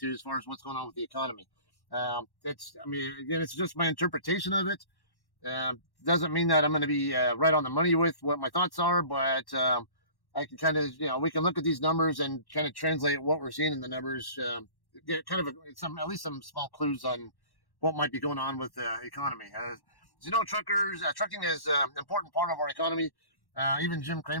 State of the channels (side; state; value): right; late; 1.1 ms